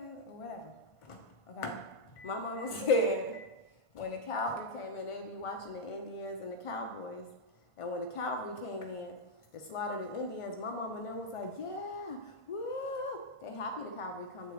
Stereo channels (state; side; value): late; right; 1.5 ms